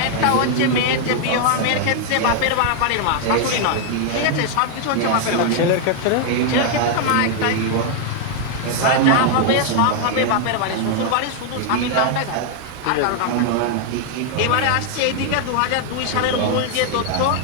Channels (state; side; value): different; both; correlation 0.00